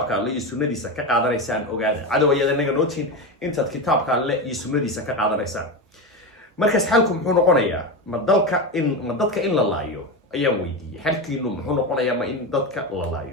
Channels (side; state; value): both; normal; correlation 0.18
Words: alle iyo sunnadiisa ka qaadanaysaan. ogaada cadow ayaad anaga noo tihiin intaad kitaabka alle iyo sunnadiisa ka qaadanaysaan. markaas xalku muxuu noqonayaa? ma dadka in la laayo ayaan weydiiyey. xalkiinu muxuu noqonayaa ma in dadka la